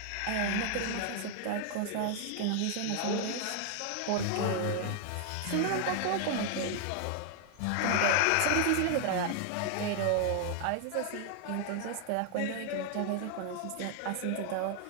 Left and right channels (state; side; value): different; both; correlation 0.00